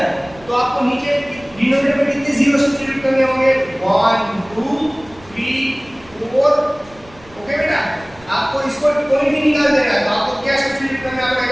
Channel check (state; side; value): noise; right; rumble, 24 dB below the sound